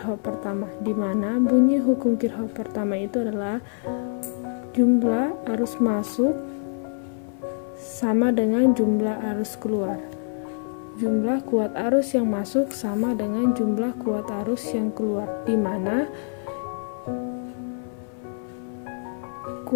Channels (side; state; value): right; silent; 61 dB below the other